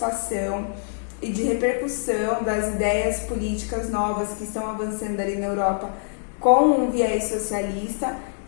e de repercussão das ideias políticas novas que estão avançando ali na Europa com um viés socialista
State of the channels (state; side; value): silent; right; digital silence